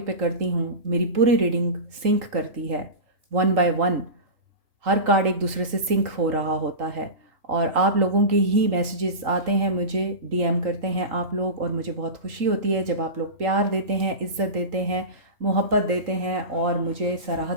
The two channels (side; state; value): left; late; 3.8 ms